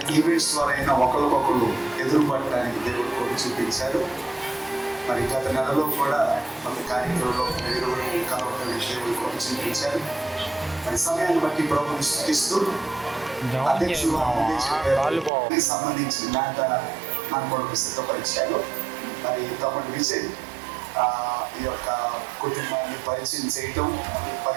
ఈవెంట్స్ ద్వారా అయినా ఒకరికొకరు ఎదురుపడటానికి దేవుడు కృప చూపించారు. మరి గత నెలలో కూడా కొంత కార్యక్రమంలో కలవడానికి దేవుడు కృప చూపించారు. మరి సమయాన్ని బట్టి ప్రభుని స్తుతిస్తూ అధ్యక్షులు సంబంధించిన మాట మన కొరకు సిద్ధపరిచారు. మరి తమ్ముడు విజయ్ ఈ యొక్క కుటుంబాన్ని పరిచయం చేయటం,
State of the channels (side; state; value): left; drops out; at 15.3 s